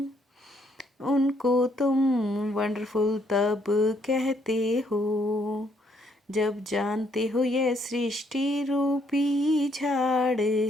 उनको तुम वंडरफुल तब कहते हो जब जानते हो यह सृष्टि रूपी झाड़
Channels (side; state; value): both; normal; correlation 0.70